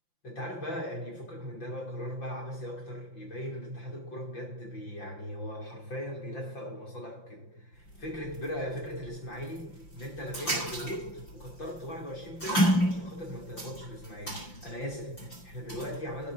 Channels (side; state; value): right; late; 5.8 ms